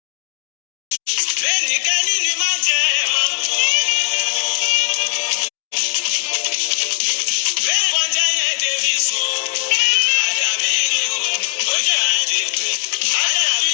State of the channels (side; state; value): right; silent; 67 dB below the other